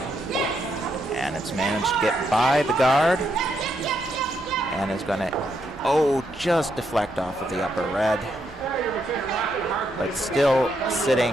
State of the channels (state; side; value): normal; both; correlation 0.78